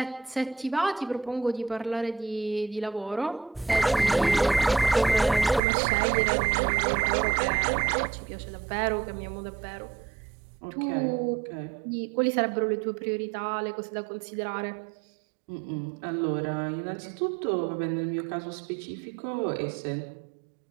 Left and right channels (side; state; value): left; drops out; at 5.6 s